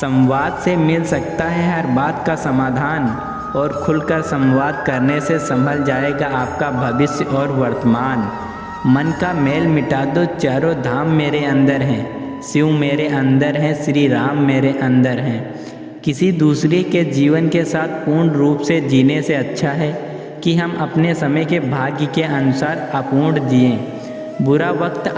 से मिल सकता है हर बात का समाधान, और खुलकर संवाद करने से संभल जाएगा आपका भविष्य और वर्तमान। मन का मेल मिटा दो, चारों धाम मेरे अंदर हैं, शिव मेरे अंदर हैं, श्री राम मेरे अंदर हैं। किसी दूसरे के जीवन के साथ पूर्ण रूप से जीने से अच्छा है कि हम अपने समय के भाग्य के अनुसार अपूर्ण जिएं। बुरा वक्त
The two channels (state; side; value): identical; both; correlation 1.00